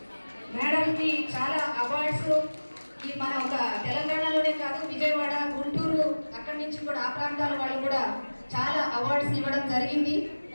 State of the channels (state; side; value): inverted; both; correlation -1.00